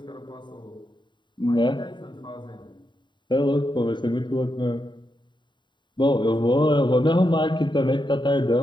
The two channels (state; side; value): late; right; 0.22 ms